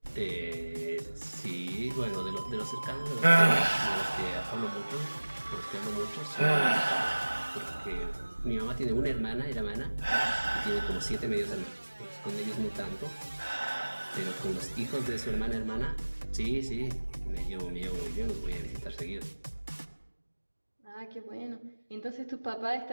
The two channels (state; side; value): inverted; both; correlation -1.00